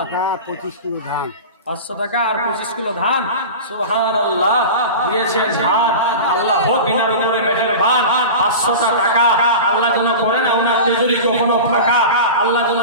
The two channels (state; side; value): inverted; both; correlation -0.30